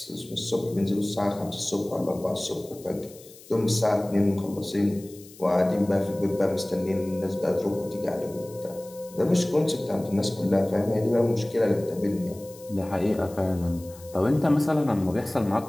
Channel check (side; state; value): left; noise; hiss, 21 dB below the sound